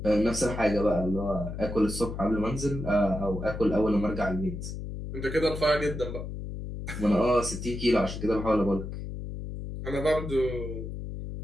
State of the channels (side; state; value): left; noise; hum, 7 dB below the sound